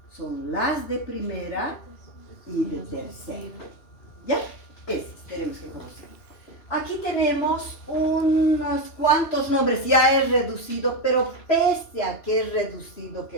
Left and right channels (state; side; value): late; right; 3.0 ms